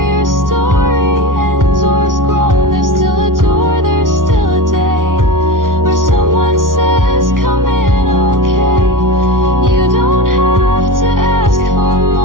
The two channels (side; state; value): left; late; 0.89 ms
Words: your story ends or is grown. There's still a door, there's still a day where someone says, come in, okay. You don't have to ask for